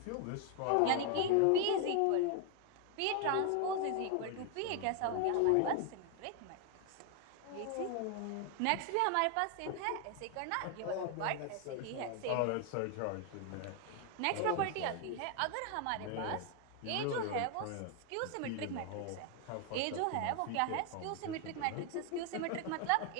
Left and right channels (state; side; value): different; both; correlation 0.01